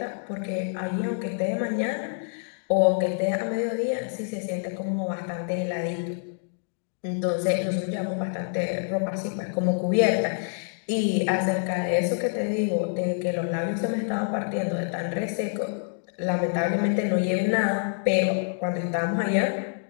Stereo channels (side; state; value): right; silent; digital silence